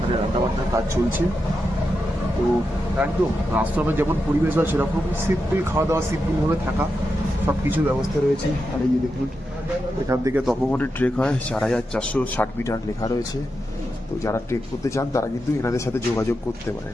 রান্নাবান্নার কাজ চলছে। তো একদম আশ্রমের যেমন পরিবেশ হয় সেরকম সিম্পল খাওয়া দাওয়া, সিম্পলভাবে থাকা, সব কিছু ব্যবস্থা রয়েছে। আর এই যে দেখুন, এখান থেকে তপবনের ট্রেক হয় 4460 মিটার লেখা রয়েছে। তো যারা ট্রেক করতে চান তারা কিন্তু এনাদের সাথে যোগাযোগ করতে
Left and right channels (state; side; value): normal; both; correlation 0.87